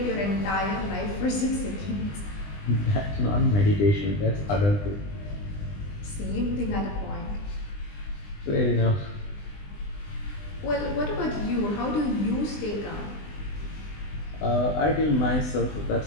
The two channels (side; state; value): right; late; 20 ms